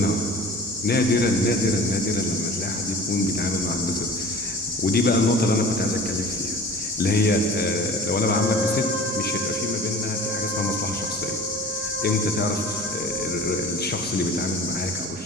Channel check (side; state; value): both; normal; correlation 0.41